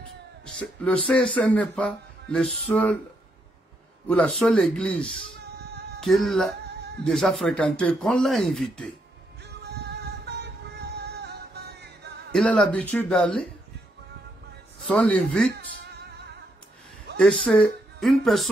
le CSN n'est pas le seul ou la seule église qu'il a déjà fréquentée, qu'on l'a invité. Il a l'habitude d'aller, on l'invite, et c'est une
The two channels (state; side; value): normal; both; correlation 0.77